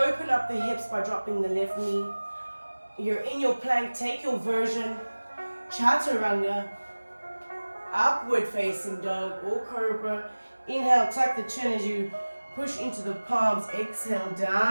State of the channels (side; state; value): both; inverted; correlation -1.00